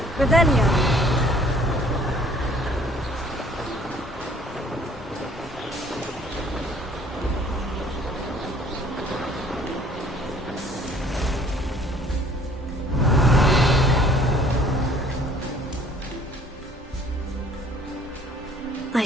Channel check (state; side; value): normal; both; correlation 0.56